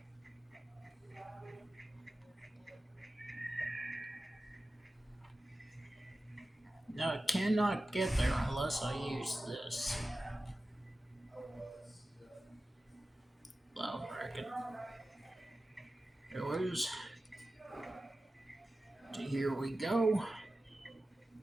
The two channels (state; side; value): normal; both; correlation 0.94